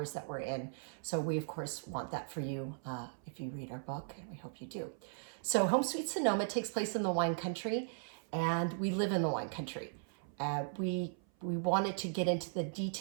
that we're in. So we, of course, want that for you if you read our book, and we hope you do. So Home Sweet Sonoma takes place in the wine country, and we live in the wine country. We wanted to get into the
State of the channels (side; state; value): left; silent; 53 dB below the other